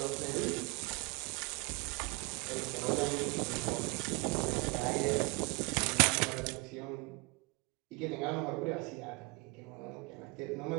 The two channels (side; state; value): left; quieter; 27.5 dB